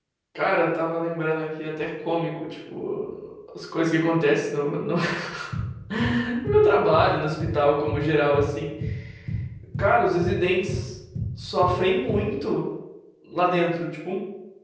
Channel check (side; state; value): both; identical; correlation 1.00